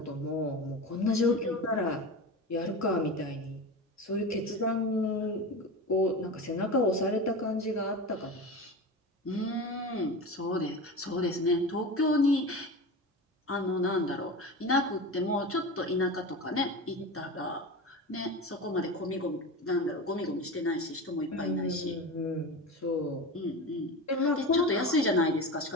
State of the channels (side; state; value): both; normal; correlation 0.27